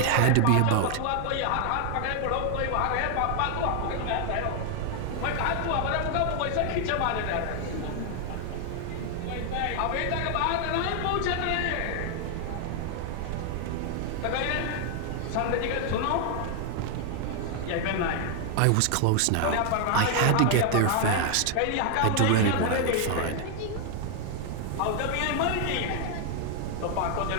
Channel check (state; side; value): different; both; correlation 0.00